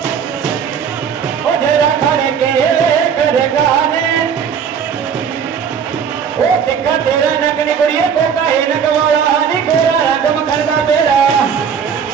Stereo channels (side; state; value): left; quieter; 7.3 dB